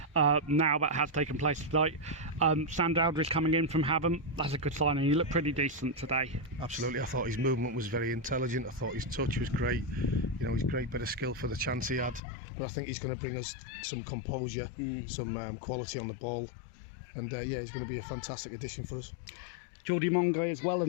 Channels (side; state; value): right; drops out; at 12.2 s